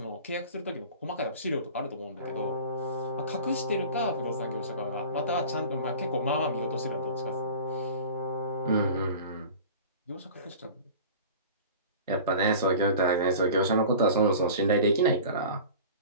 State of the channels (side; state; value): both; inverted; correlation -0.39